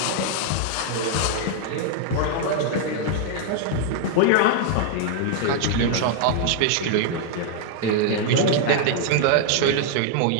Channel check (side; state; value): both; different; correlation 0.00